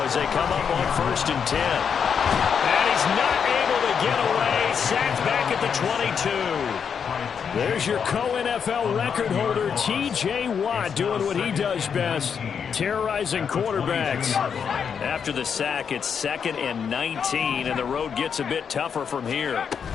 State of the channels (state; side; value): quieter; right; 7.0 dB